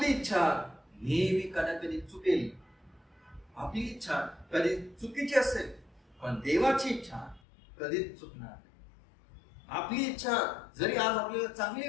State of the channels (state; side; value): drops out; right; at 7.4 s